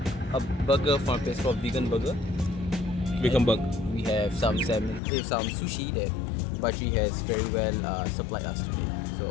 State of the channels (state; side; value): drops out; right; at 5.0 s